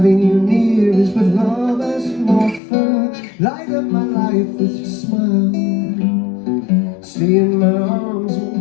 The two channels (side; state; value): right; drops out; at 2.6 s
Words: you near is what love has to offer. Light up my life with your smile. Stay in my arms